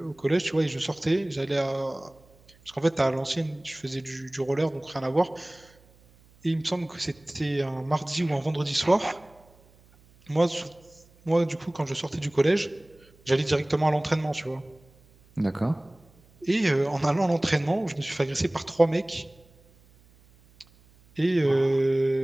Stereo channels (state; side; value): noise; right; hum, 29 dB below the sound